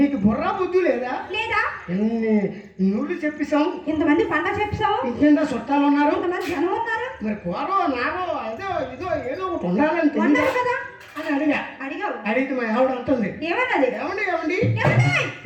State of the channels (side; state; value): both; identical; correlation 1.00